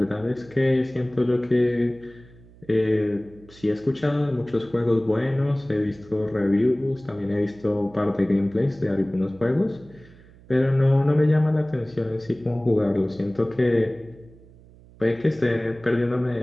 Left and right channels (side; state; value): right; noise; hum, 24 dB below the sound